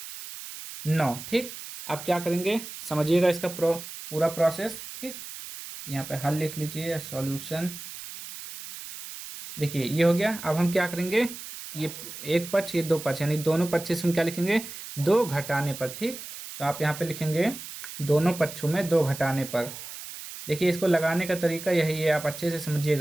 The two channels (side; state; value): right; noise; hiss, 11 dB below the sound